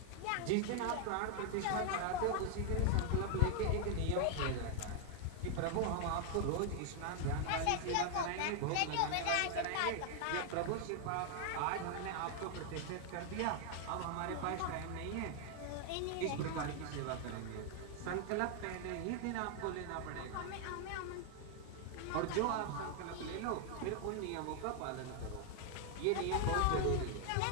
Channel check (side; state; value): both; different; correlation 0.00